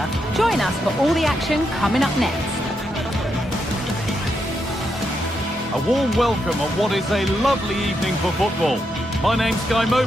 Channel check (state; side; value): normal; both; correlation 0.82